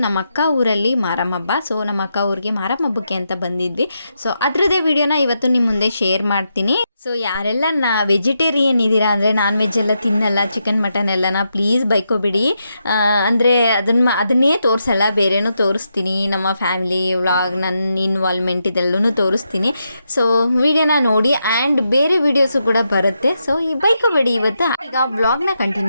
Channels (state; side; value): inverted; both; correlation -0.84